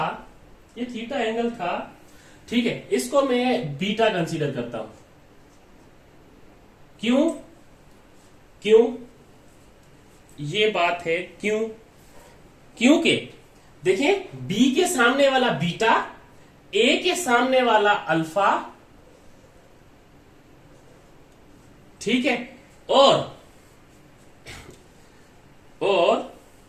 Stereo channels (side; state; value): both; identical; correlation 1.00